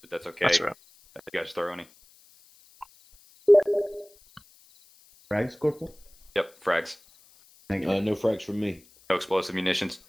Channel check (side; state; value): left; noise; hiss, 28 dB below the sound